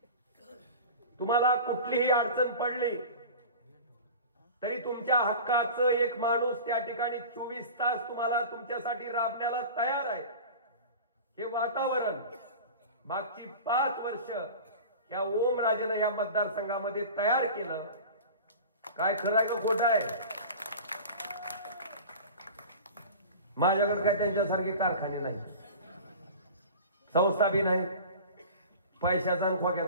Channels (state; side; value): inverted; both; correlation -0.36